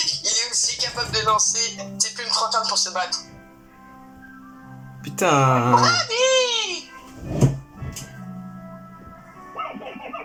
est aussi capable de lancer ses plumes flottantes pour se battre. Putain. Allez!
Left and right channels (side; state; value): both; identical; correlation 1.00